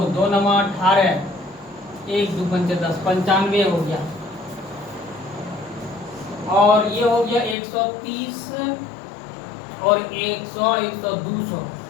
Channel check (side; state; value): right; drops out; at 7.6 s